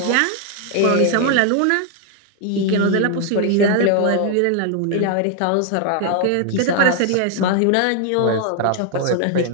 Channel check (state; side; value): different; both; correlation 0.00